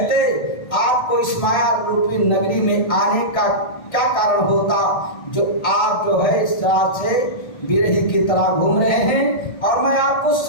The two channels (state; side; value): late; right; 1.6 ms